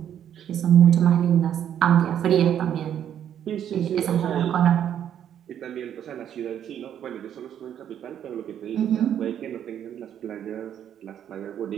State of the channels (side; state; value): left; quieter; 9.8 dB